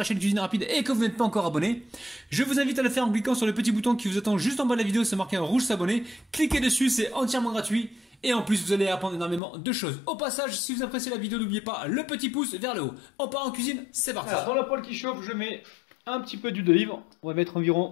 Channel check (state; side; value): drops out; right; at 9.4 s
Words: chaîne Cuisine Rapide et que vous n'êtes pas encore abonné, je vous invite à le faire en cliquant sur le petit bouton qui vous attend juste en bas de la vidéo. C'est marqué en rouge s'abonner. Cliquez dessus, c'est entièrement gratuit. Et en plus, vous allez apprendre énormément de choses. Au passage, si vous appréciez la vidéo, n'oubliez pas le petit pouce vers le haut. On part en cuisine, c'est parti. Alors, dans la poêle qui chauffe, je mets un petit peu d'huile d'olive. On va mettre